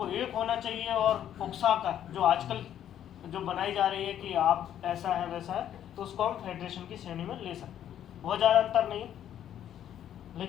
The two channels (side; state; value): right; quieter; 10.5 dB